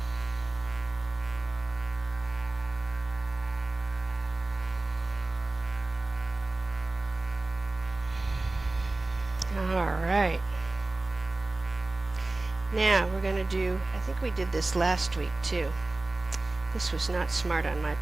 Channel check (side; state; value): left; quieter; 3.0 dB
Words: All right. Now we're going to do, I think we did this last week too. This was not smart on my